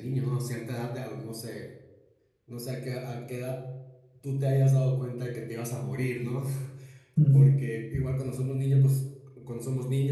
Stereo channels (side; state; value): both; identical; correlation 1.00